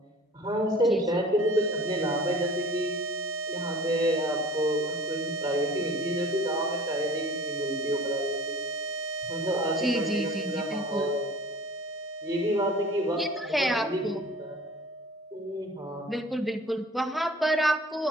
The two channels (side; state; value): both; normal; correlation 0.45